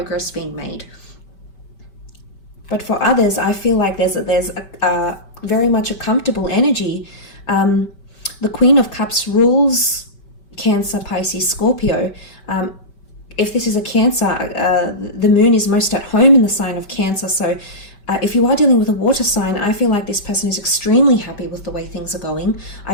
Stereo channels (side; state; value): right; late; 5.2 ms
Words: being made. But for others, I feel like there's a very much a comfortable energy. The Queen of Cups rules Cancer, Pisces, Scorpio. If this is a Cancer, the moon is most at home in the sign of Cancer. So if you are dealing with a water sign, I feel like this person is extremely happy with the way things are going.